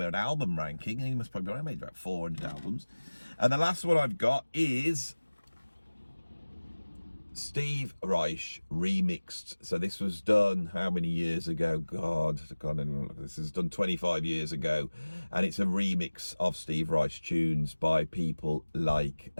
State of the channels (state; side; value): inverted; both; correlation -1.00